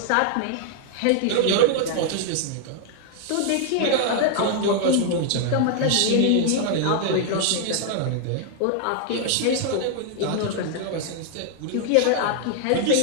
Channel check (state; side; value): different; both; correlation 0.00